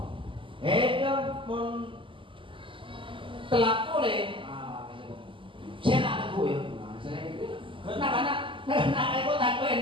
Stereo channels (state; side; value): late; left; 0.25 ms